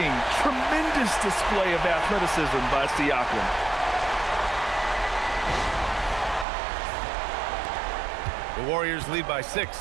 Tremendous display of athleticism by Siakam. The Warriors lead by 6.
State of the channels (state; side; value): drops out; left; at 6.5 s